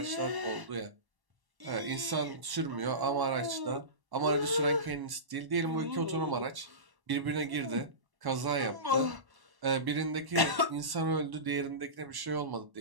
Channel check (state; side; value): late; left; 1.1 ms